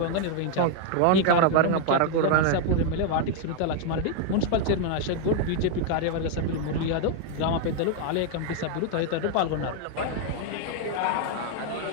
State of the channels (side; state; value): both; different; correlation 0.00